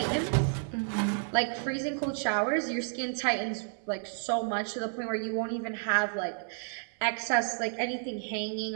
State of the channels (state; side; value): silent; left; 57 dB below the other